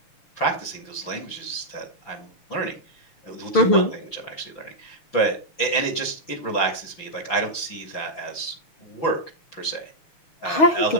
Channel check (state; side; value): late; right; 6.0 ms